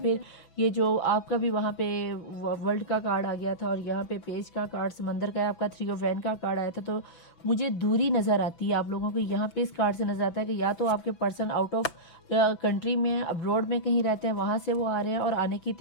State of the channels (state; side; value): late; right; 6.0 ms